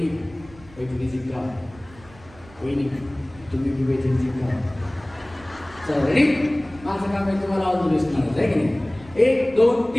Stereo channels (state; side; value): noise; right; rumble, 22 dB below the sound